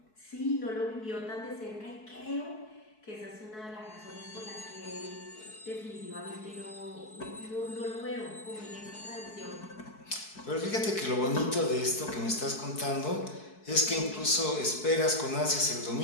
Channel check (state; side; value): late; right; 4.6 ms